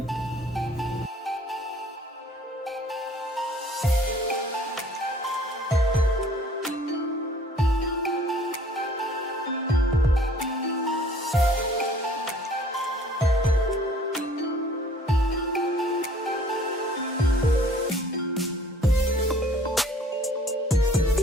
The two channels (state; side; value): normal; both; correlation 0.55